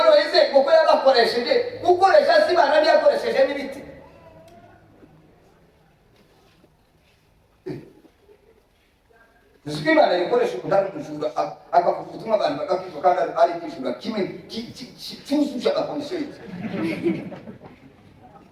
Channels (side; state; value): both; identical; correlation 1.00